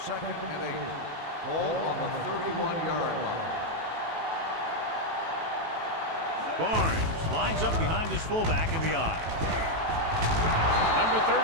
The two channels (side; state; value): left; late; 18 ms